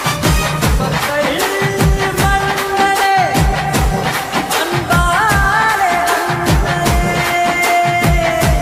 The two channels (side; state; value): both; identical; correlation 1.00